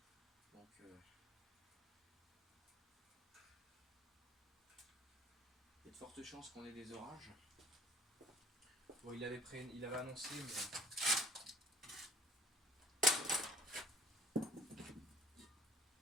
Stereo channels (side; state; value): both; normal; correlation 0.52